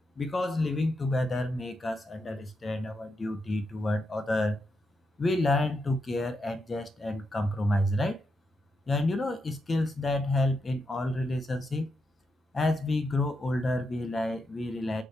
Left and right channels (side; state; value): both; normal; correlation 0.84